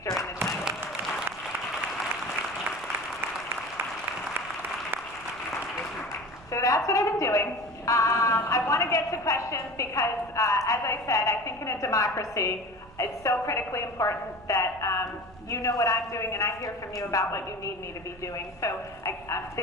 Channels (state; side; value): noise; right; rumble, 22 dB below the sound